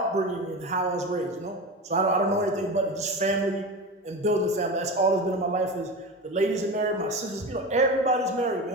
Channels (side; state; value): both; normal; correlation 0.25